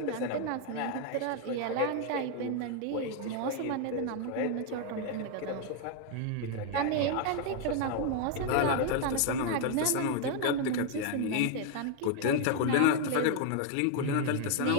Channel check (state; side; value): different; both; correlation 0.00